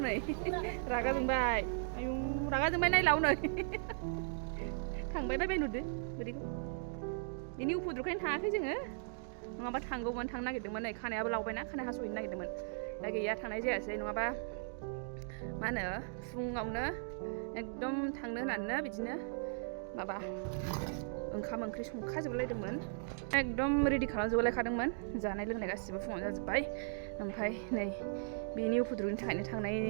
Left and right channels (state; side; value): silent; left; digital silence